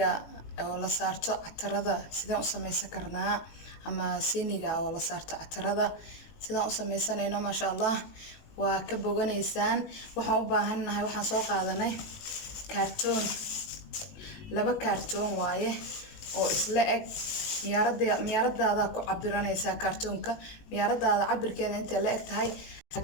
oo la saarto catarada sidaan u samaysan karnaa ama siiniga oo la saarto catarada sidaan u samaysanayno maasha Allah waa ka boganaysaan waxaan u baahanahay waxaan soo qaadanay kartoon laba kartoon waaye oo isla eg miyaaradaada ku cabiranaysaa kartoonka miyaaradaada cabirkeeda inta la eg tahay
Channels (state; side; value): late; right; 19 ms